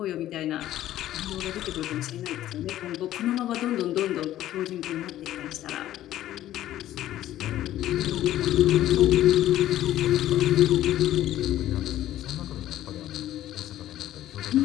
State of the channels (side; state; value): right; quieter; 13.3 dB